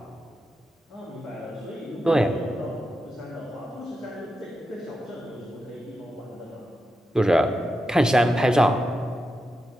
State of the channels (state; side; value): normal; both; correlation 0.88